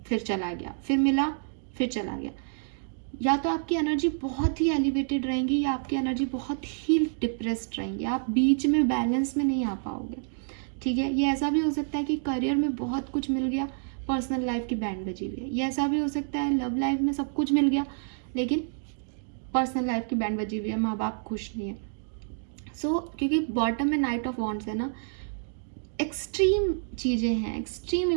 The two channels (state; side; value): silent; left; digital silence